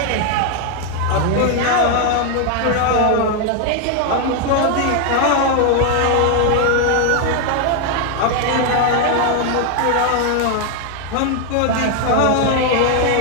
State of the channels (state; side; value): different; both; correlation 0.01